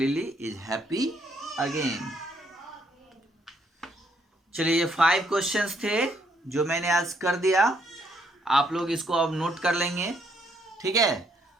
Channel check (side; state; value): both; normal; correlation 0.71